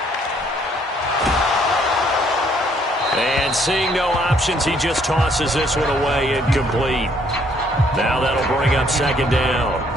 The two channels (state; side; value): normal; both; correlation 0.65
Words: And seeing no options, he just tosses this one away, incomplete. Now that'll bring up second down.